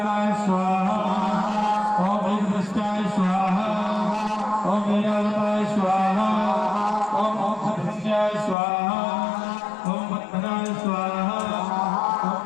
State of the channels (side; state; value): right; drops out; at 8.6 s